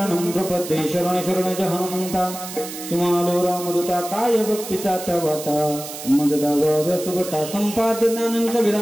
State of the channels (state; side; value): noise; right; hiss, 10 dB below the sound